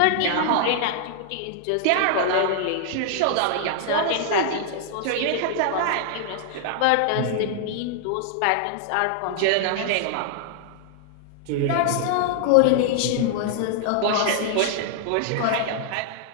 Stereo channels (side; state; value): both; different; correlation -0.01